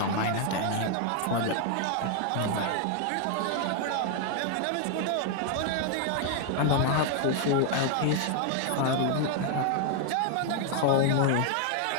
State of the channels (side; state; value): both; different; correlation 0.00